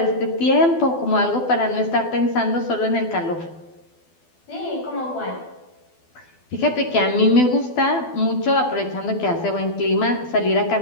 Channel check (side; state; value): right; late; 12 ms